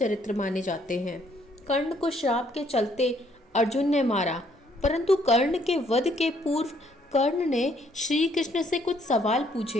माने जाते हैं। कर्ण को श्राप के चलते अर्जुन ने मारा, परंतु कर्ण के वध के पूर्व कर्ण ने श्री कृष्ण से कुछ सवाल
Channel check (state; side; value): normal; both; correlation 0.67